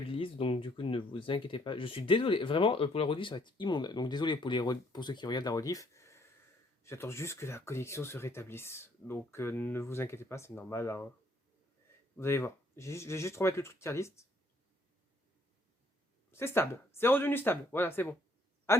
donc du coup ne vous inquiétez pas. Je suis désolé, vraiment pour la rediff ça va être immonde. Donc désolé pour ceux qui regardent la rediff. J'attends juste que la connexion se rétablisse. Donc ne vous inquiétez pas, c'est normal, hein. Vous allez voir. Je vais juste remettre le truc tier list. C'est stable, c'est redevenu stable. Voilà, c'est bon. Ah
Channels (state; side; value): normal; both; correlation 0.66